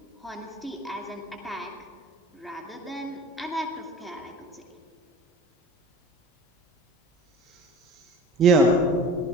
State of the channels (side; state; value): both; normal; correlation 0.41